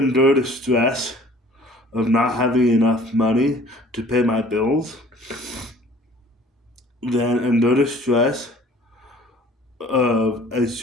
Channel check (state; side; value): normal; both; correlation 0.51